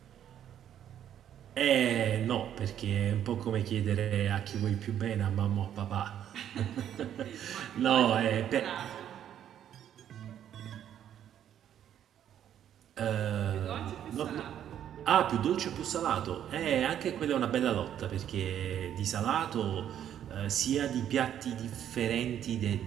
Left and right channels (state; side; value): quieter; left; 10.2 dB